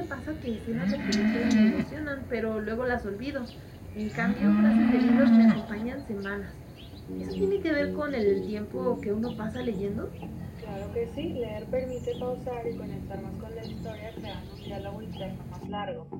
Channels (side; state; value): both; identical; correlation 1.00